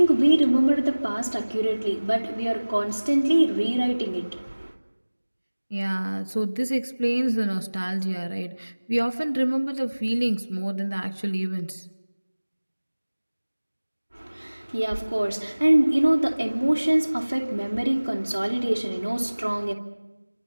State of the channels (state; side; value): inverted; both; correlation -1.00